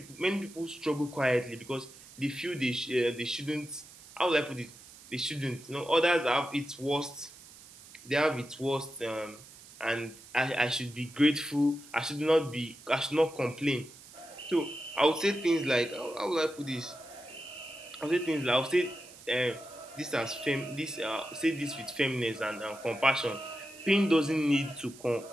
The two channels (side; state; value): right; noise; hiss, 20 dB below the sound